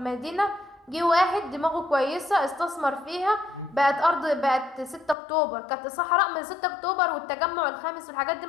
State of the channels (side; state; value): right; drops out; at 5.2 s